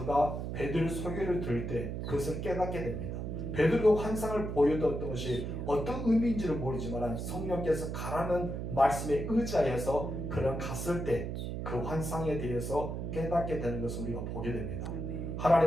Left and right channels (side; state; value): right; noise; hum, 4 dB below the sound